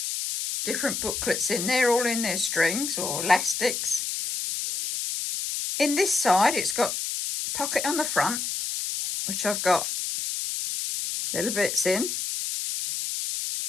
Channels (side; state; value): left; noise; hiss, 3 dB below the sound